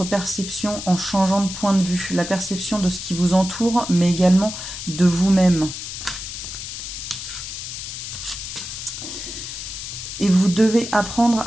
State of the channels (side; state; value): left; noise; hiss, 8 dB below the sound